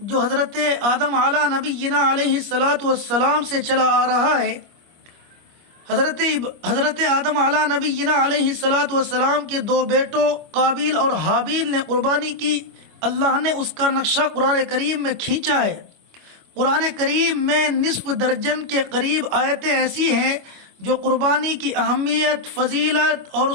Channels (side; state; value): left; late; 25 ms